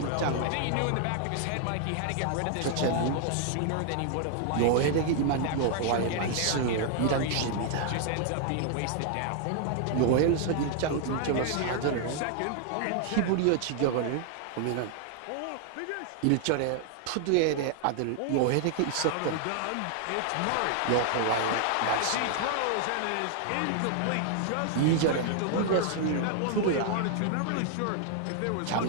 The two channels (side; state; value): both; different; correlation 0.00